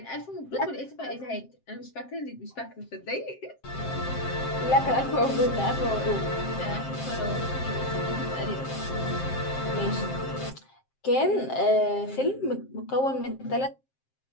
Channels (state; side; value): late; right; 7.6 ms